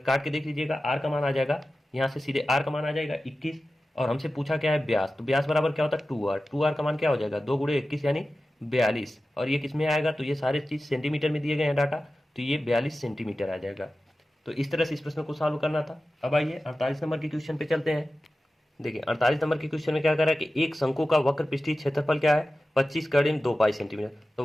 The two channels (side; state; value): both; normal; correlation 0.94